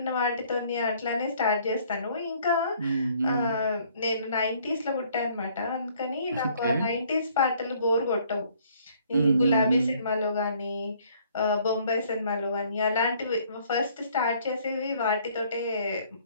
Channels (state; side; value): inverted; both; correlation -0.61